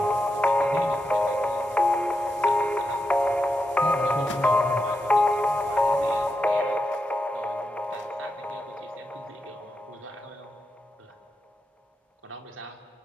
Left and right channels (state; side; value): normal; both; correlation 0.86